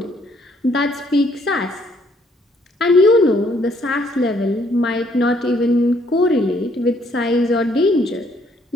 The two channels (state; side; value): normal; both; correlation 0.67